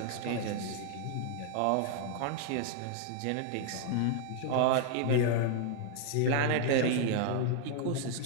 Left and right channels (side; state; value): both; different; correlation 0.00